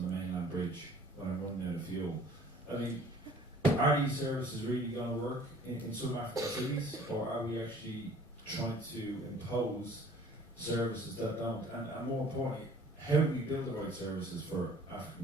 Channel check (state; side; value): normal; both; correlation 0.52